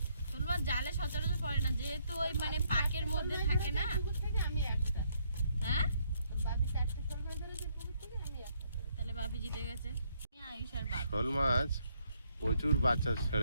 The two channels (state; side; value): inverted; both; correlation -0.71